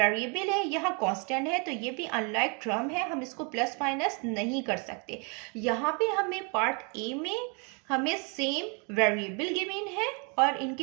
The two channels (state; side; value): quieter; left; 34.4 dB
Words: है, यहाँ कांस्टेंट है, तो ये भी अनलाइक टर्म है, हम इसको प्लस माइनस नहीं कर सकते। यहाँ पे हमें पार्ट ए में हमें सेम वेरिएबल गिवन है और